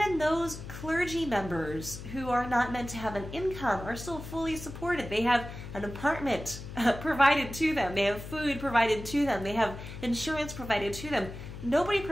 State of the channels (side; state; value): left; noise; hum, 11 dB below the sound